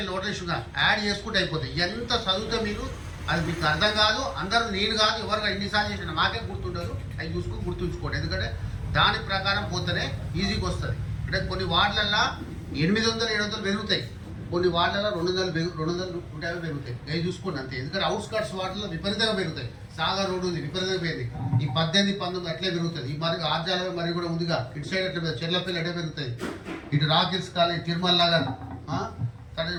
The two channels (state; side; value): identical; both; correlation 1.00